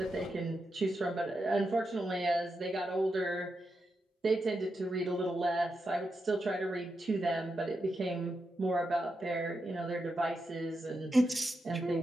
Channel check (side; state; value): both; normal; correlation 0.86